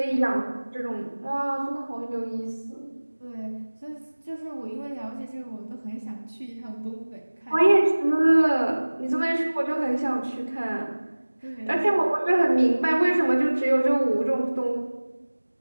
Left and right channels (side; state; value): both; inverted; correlation -1.00